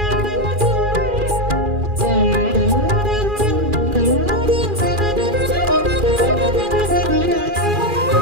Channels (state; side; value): late; left; 2.4 ms